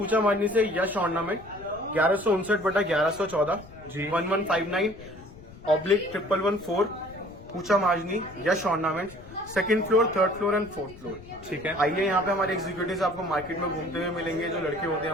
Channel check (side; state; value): left; noise; rumble, 19 dB below the sound